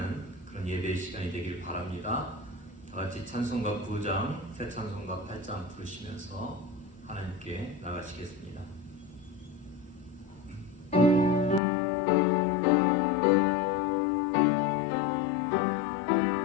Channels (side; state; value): right; drops out; at 11.6 s